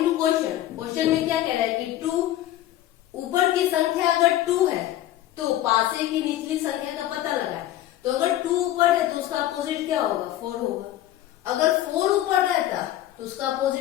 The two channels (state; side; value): quieter; right; 13.6 dB